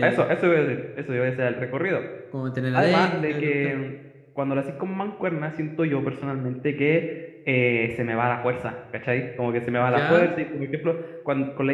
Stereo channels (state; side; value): identical; both; correlation 1.00